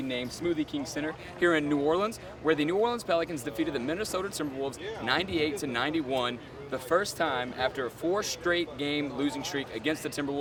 named Smoothie King Center here in New Orleans, where the New Orleans Pelicans defeated the Minnesota Timberwolves 98-91, the first time after a 4 straight game losing streak against the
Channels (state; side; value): identical; both; correlation 1.00